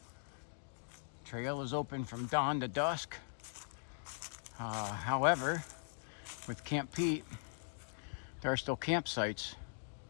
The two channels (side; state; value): right; silent; digital silence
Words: Trail is open from dawn to dusk. However, with Camp Peet, there are still campsites